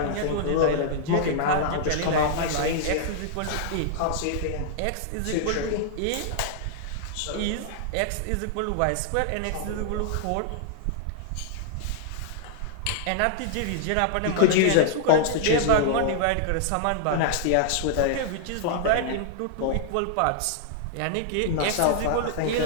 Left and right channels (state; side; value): different; both; correlation -0.01